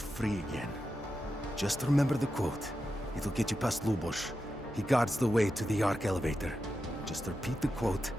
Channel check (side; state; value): both; normal; correlation 0.89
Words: free again. Just remember the quote. It'll get you past Lubosh. He guards the way to the Ark elevator. Just repeat the quote,